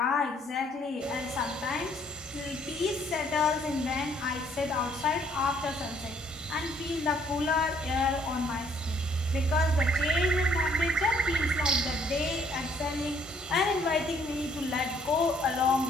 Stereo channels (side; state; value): both; normal; correlation 0.64